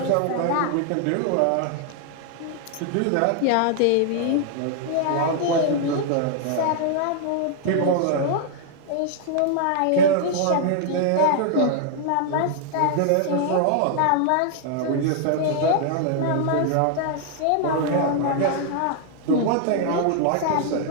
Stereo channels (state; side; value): different; both; correlation 0.00